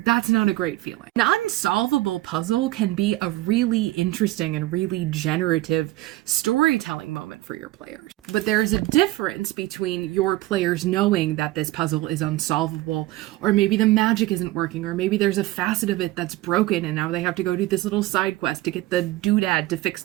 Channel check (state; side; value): quieter; left; 17.4 dB